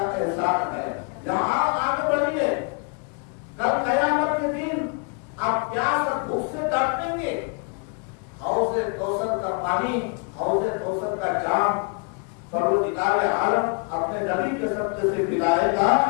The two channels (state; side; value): quieter; right; 36.6 dB